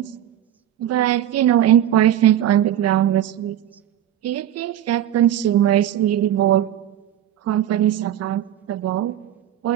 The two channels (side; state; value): left; quieter; 11.5 dB